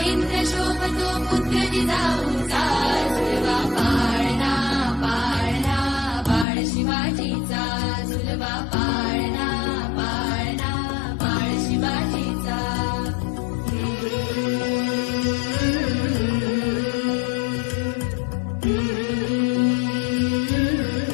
इंद्र शोभतो पुत्र जिजाऊचा. झुलवा पाळणा पाळणा बाळ शिवाजीचा, झुलवा पाळणा पाळणा बाळ शिवाजीचा.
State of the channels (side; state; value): right; drops out; at 6.5 s